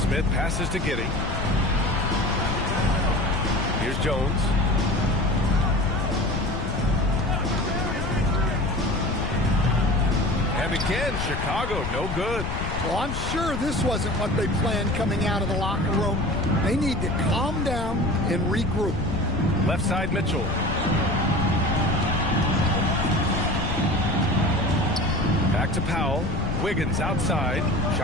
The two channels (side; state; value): left; noise; rumble, 4 dB below the sound